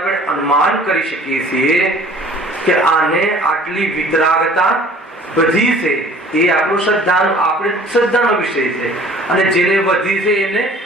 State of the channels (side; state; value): both; normal; correlation 0.50